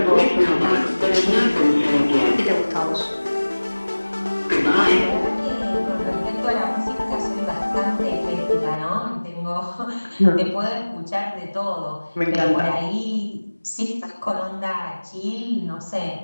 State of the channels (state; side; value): inverted; both; correlation -1.00